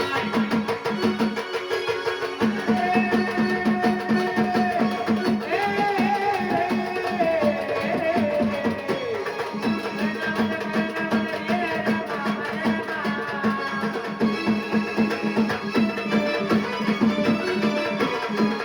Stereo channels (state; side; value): identical; both; correlation 1.00